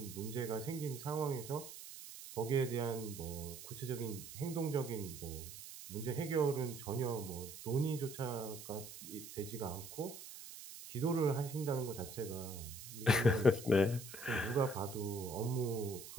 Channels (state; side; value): noise; right; hiss, 12 dB below the sound